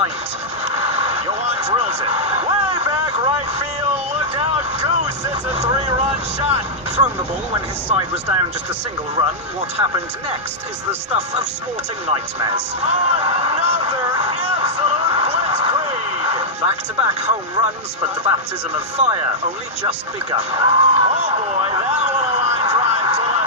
Yohan drills it. Way back right field. Look out. Goose. It's a 3-run shot. Thrown the ball when his side was down just a single run. What happened next is the stuff of sporting nightmares. Another absolute blitzkrieg. Back-to-back home runs, but the baptism of fire only just begun. Oh boy, that one a line drive to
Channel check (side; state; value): both; normal; correlation -0.07